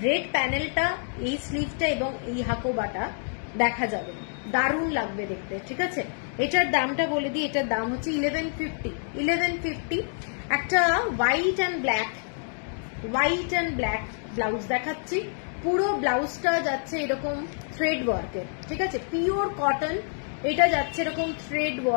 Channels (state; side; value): silent; right; 60 dB below the other